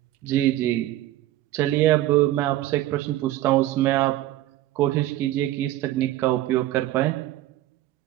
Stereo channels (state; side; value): quieter; left; 14.8 dB